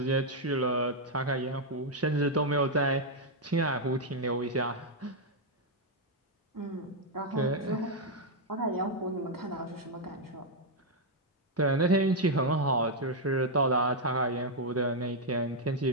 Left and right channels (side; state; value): both; normal; correlation -0.01